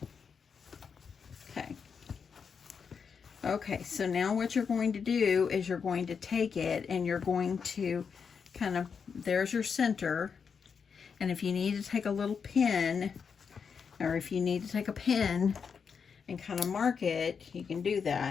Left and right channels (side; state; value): right; quieter; 6.2 dB